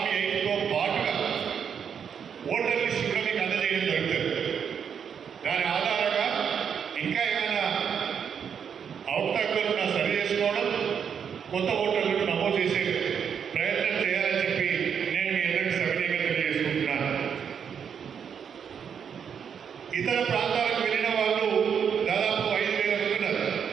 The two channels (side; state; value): left; quieter; 7.4 dB